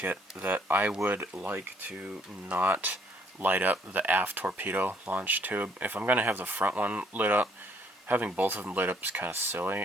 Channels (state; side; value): normal; both; correlation 0.65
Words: that I would like to not light up the aft torpedo launch tube. If I'm gonna have the front one lit up, having both of them lit up is kind of